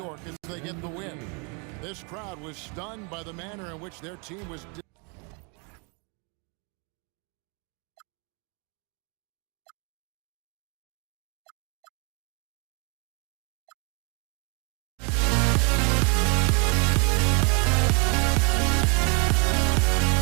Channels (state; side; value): quieter; left; 34.3 dB